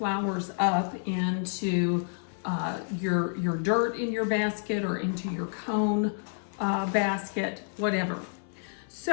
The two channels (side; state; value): right; silent; 58 dB below the other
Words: up into your dirt in your basket or into your cone basket, whatever.